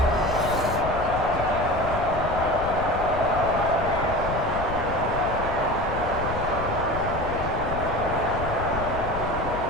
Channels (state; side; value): noise; left; rumble, 6 dB below the sound